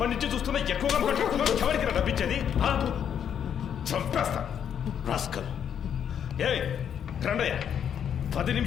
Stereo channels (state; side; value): quieter; right; 8.6 dB